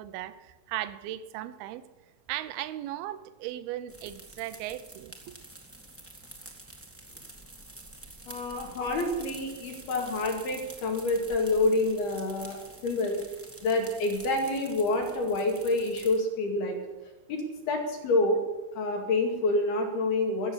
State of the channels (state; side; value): normal; both; correlation -0.19